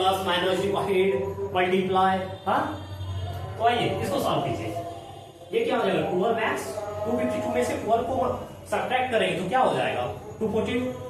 माइनस डिवाइड मल्टीप्लाई। हाँ तो आइए इसको सॉल्व कीजिए। ये क्या हो जाएगा 12x 252 में से 12 को सब्ट्रैक्ट करेंगे तो क्या हो जाएगा 240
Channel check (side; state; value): both; identical; correlation 1.00